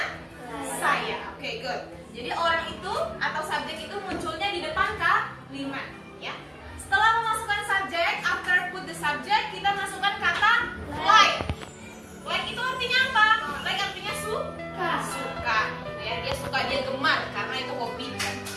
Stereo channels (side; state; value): both; identical; correlation 1.00